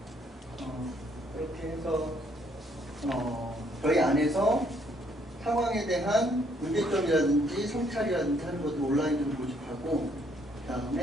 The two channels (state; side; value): normal; both; correlation 0.68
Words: 그렇게 해서 저희 안에서 상황에 대한 문제점이라든지 성찰이라든지 하는 것을 온라인으로 모집하고 그